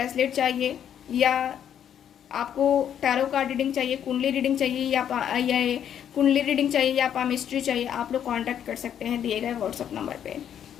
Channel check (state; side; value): quieter; right; 9.4 dB